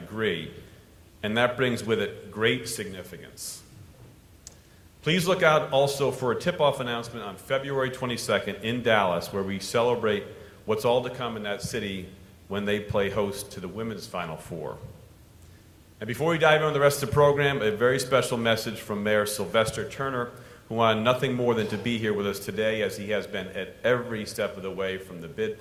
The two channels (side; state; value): both; identical; correlation 1.00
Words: and that brings with it great significance. Please look out also for a tip-off announcement on February 22nd in Dallas, where we celebrate what's all to come in that city when they play host to the women's Final Four. And before we dive into the rest of the program, a very special message from Mayor Sylvester Turner, who wanted nothing more than to be here with us today, as he has been at every step of the way from the bid